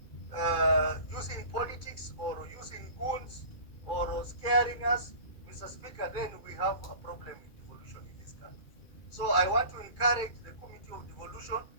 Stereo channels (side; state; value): right; late; 2.2 ms